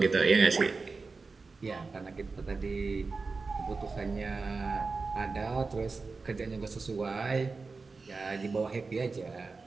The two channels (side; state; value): left; quieter; 4.2 dB